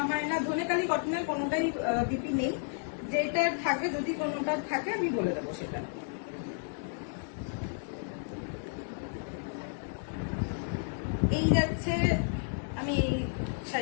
হয় না, ধনেকালি কটনের কোনোটাই বিপি নেই। যেটা থাকে, যদি কোনোটা থাকে আমি বলে দেবো সেটা। এই যাচ্ছে, আমি এই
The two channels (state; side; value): silent; right; digital silence